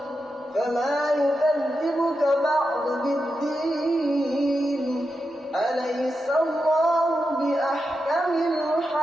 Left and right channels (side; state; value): both; normal; correlation 0.88